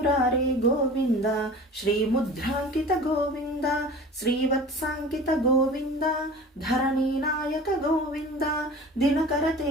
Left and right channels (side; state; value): both; normal; correlation 0.39